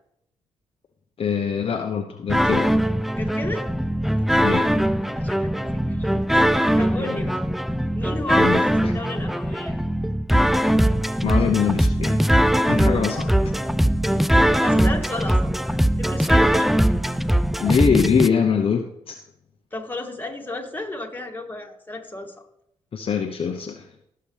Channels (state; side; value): normal; both; correlation 0.90